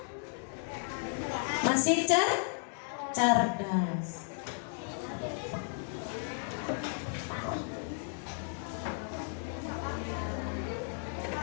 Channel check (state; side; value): silent; right; 55 dB below the other